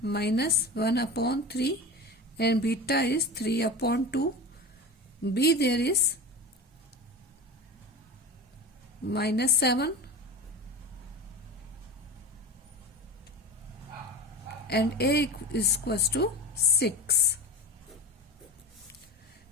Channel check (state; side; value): normal; both; correlation 0.29